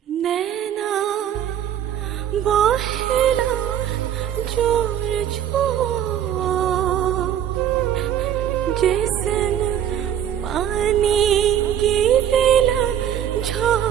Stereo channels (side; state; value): left; quieter; 10.2 dB